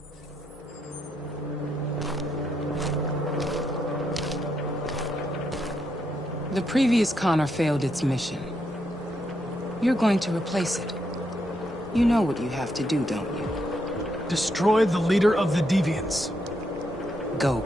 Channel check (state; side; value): normal; both; correlation 0.79